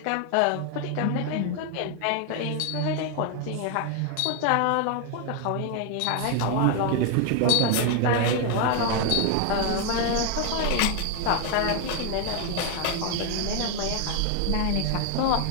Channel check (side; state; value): both; different; correlation 0.00